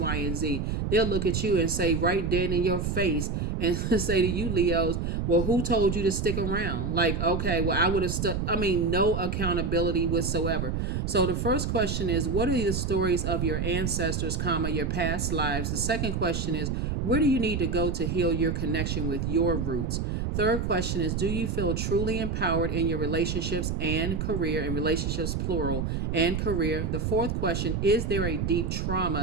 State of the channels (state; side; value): noise; right; rumble, 1 dB below the sound